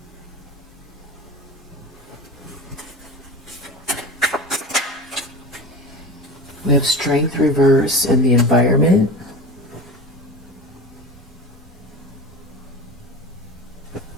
We have strength reverse in the environment.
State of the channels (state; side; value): normal; both; correlation 0.32